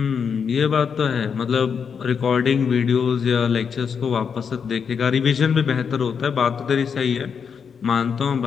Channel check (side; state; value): right; quieter; 6.6 dB